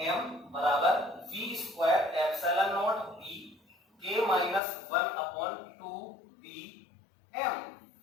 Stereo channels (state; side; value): drops out; right; at 4.6 s